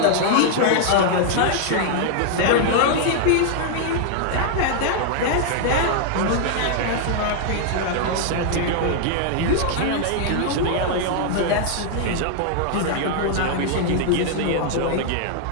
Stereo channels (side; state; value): both; different; correlation 0.00